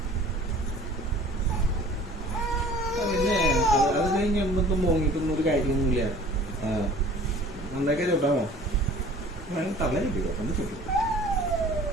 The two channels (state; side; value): normal; both; correlation 0.48